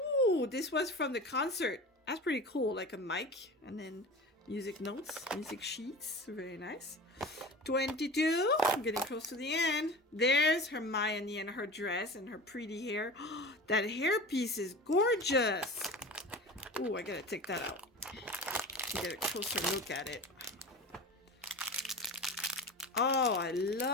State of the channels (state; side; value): normal; both; correlation 0.34